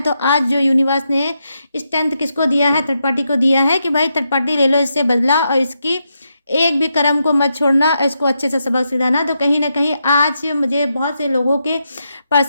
आज जो यूनिवर्स ने स्ट्रेंथ किसको दिया है, थर्ड पार्टी को दिया है कि भाई थर्ड पार्टी ले लो इससे बदला और इसकी एक भी कर्म को मत छोड़ना, इसको अच्छे से सबक सिखाना। तो कहीं ना कहीं आज मुझे बहुत से लोगों के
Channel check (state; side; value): inverted; both; correlation -0.83